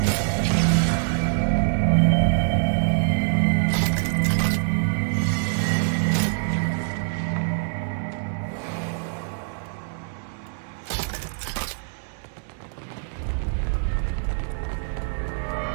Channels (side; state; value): left; silent; digital silence